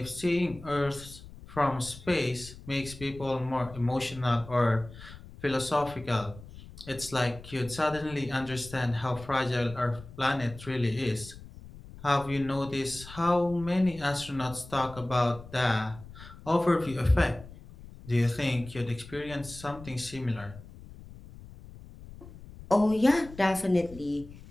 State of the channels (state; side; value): noise; left; rumble, 17 dB below the sound